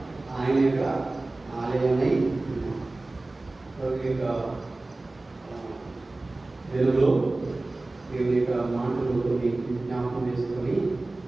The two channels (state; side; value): quieter; left; 3.0 dB